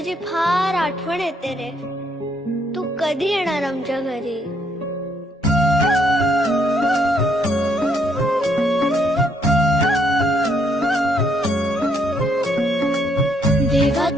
फार आठवण येते रे. तू कधी येणार आमच्या घरी? देवा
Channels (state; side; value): normal; both; correlation 0.71